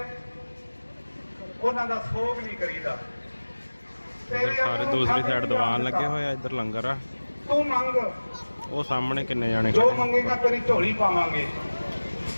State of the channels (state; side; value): inverted; both; correlation -1.00